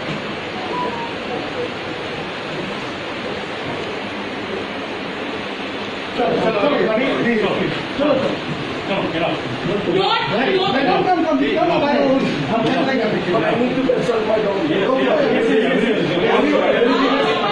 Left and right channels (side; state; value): both; identical; correlation 1.00